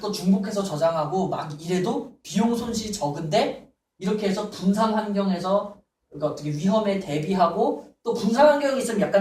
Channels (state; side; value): identical; both; correlation 1.00